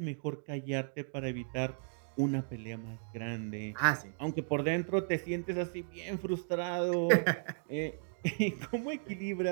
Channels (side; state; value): left; silent; digital silence